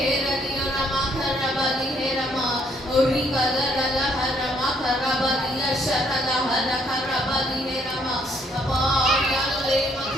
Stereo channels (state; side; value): normal; both; correlation 0.68